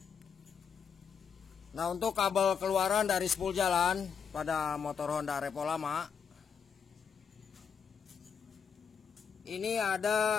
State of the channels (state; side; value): quieter; right; 6.8 dB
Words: Nah, untuk kabel keluaran dari spool jalan pada motor Honda Repo lama, ini